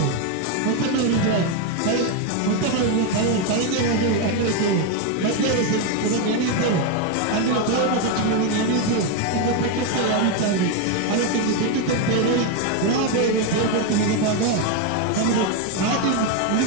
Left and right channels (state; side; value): different; both; correlation 0.02